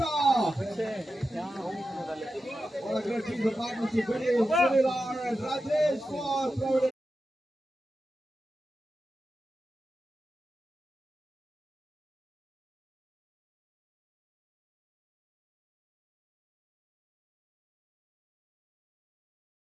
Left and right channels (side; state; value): both; normal; correlation 0.91